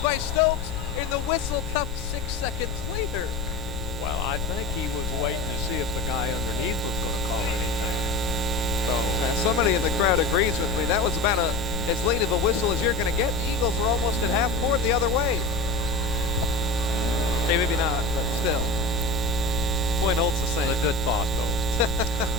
by Stokes, and the whistle comes 6 seconds later. Well, I think he was waiting to see if the guy underneath was going to call anything. So somebody in the crowd agrees with me. That was about as late of a whistle as you're going to get. The Eagles were almost at half court the other way. Okay, maybe not, but still. Point holds the same. it's a good thought, though.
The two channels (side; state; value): left; noise; rumble, 5 dB below the sound